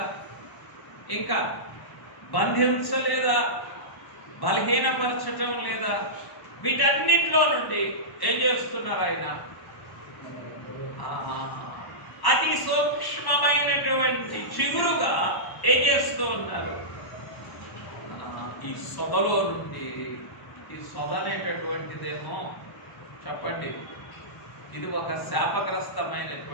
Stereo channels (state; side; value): late; right; 1.1 ms